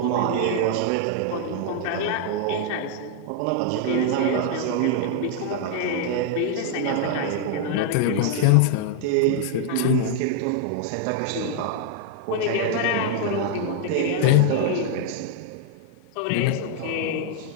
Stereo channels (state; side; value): different; both; correlation 0.00